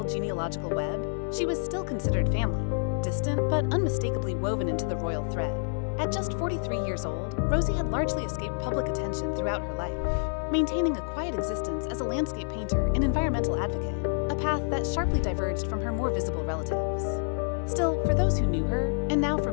genealogical web, she was still considered family, distant but unmistakably woven into the royal thread. At just 43 years old, Rosie had largely escaped public attention throughout her life, maintaining a quiet existence as a landscape painter and environmental advocate, a path that sharply diverged from her more visible relatives. Still, for those who knew her, and now for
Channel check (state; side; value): silent; right; digital silence